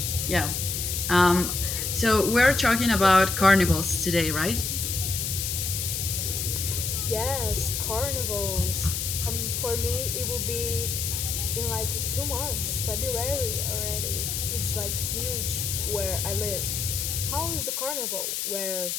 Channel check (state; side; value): noise; left; hiss, 2 dB below the sound